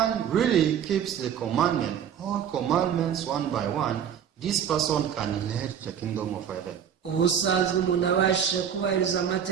really keeps the commandment, all commandments one by one, this person can inherit the kingdom of heaven. Ubusanzwe umuntu abashe kubahiriza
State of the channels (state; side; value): quieter; left; 8.5 dB